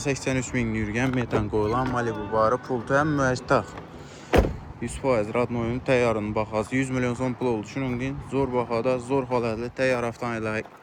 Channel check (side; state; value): both; identical; correlation 1.00